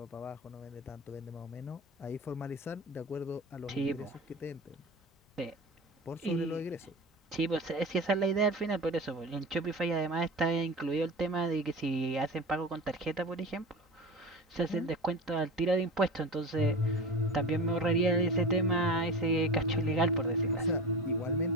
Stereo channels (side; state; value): both; normal; correlation 0.31